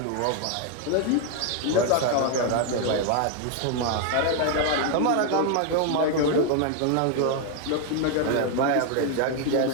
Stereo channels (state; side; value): different; both; correlation 0.00